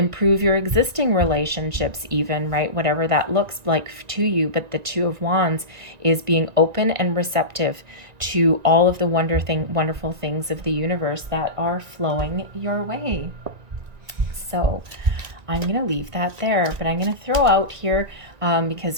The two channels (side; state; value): left; late; 1.9 ms